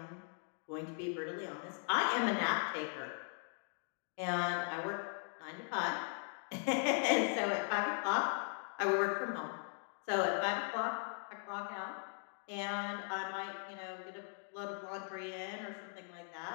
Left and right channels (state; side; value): silent; right; 52 dB below the other